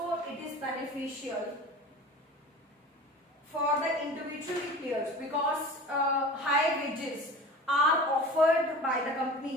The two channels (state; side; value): normal; both; correlation 0.37